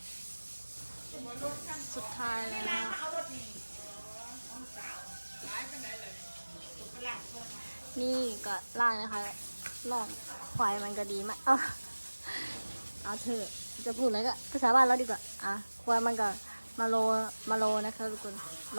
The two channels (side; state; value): both; inverted; correlation -1.00